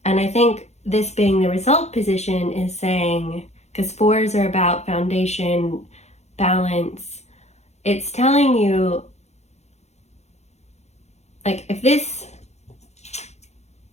And I think this being the result position is saying, because 4s are about foundation, balance, it's telling you, like, if this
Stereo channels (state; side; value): late; right; 0.32 ms